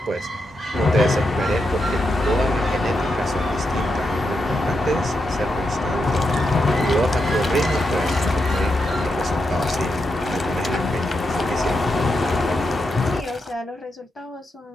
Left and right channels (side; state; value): both; normal; correlation 0.84